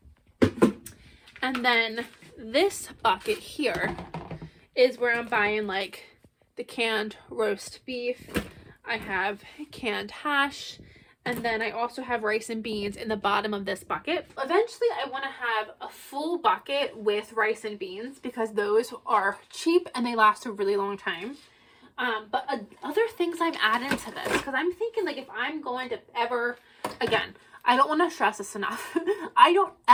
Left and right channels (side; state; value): both; identical; correlation 1.00